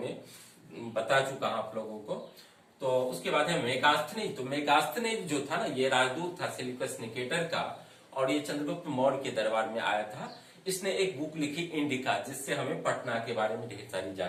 बता चुका हूं आप लोगों को। तो उसके बाद है मेगास्थनीज। तो मेगास्थनीज जो था ना, ये राजदूत था सेल्यूकस निकेटर का, और ये चंद्रगुप्त मौर्य के दरबार में आया था। इसने एक बुक लिखी इंडिका, जिससे हमें पटना के बारे में ढेर सारी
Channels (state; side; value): identical; both; correlation 1.00